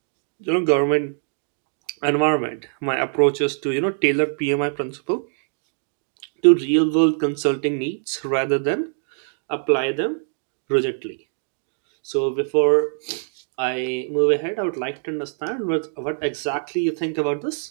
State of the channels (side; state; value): left; silent; digital silence